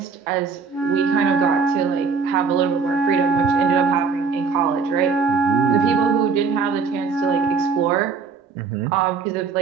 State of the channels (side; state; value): left; quieter; 5.2 dB